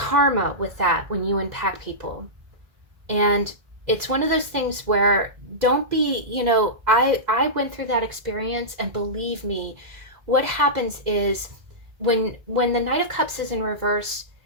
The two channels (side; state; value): left; late; 2.0 ms